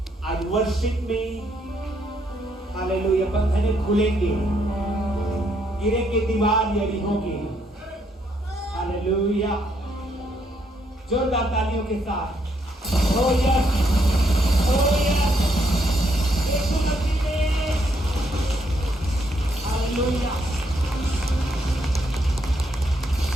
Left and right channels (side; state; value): both; normal; correlation 0.74